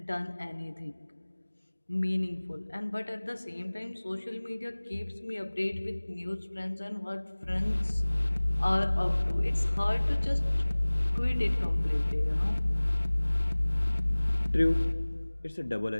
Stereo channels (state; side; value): inverted; both; correlation -1.00